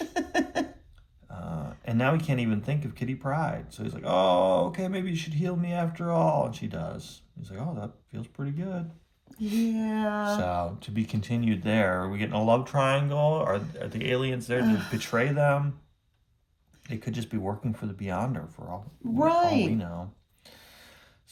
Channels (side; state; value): both; identical; correlation 1.00